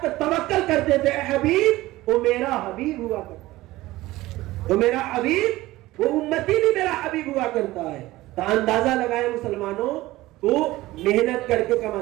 پر توکل کرتے تھے، اے حبیب وہ میرا حبیب ہوا کرتا ہے، وہ میرا حبیب، وہ امتی بھی میرا حبیب ہوا کرتا ہے. تو اندازہ لگائے مسلمانوں، تو محنت کر کے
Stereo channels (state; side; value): quieter; left; 17.9 dB